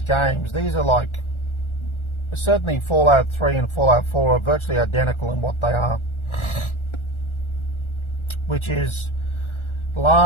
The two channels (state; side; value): late; right; 1.4 ms